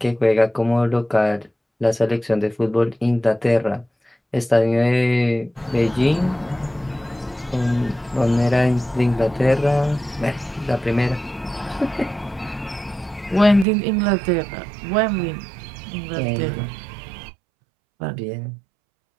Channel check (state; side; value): drops out; left; at 13.7 s